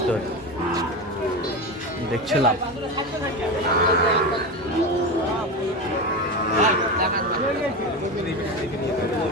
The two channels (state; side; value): normal; both; correlation 0.20